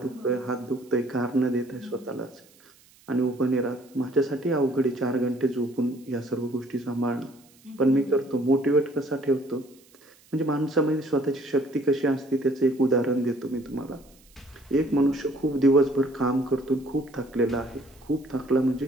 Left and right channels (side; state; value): right; noise; hiss, 29 dB below the sound